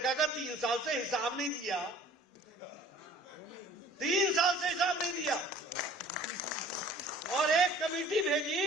का 3 साल से हिसाब नहीं दिया, 3 साल से हिसाब नहीं दिया, और एक कमेटी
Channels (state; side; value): normal; both; correlation 0.50